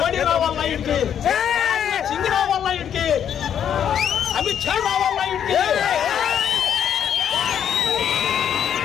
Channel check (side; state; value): right; quieter; 9.0 dB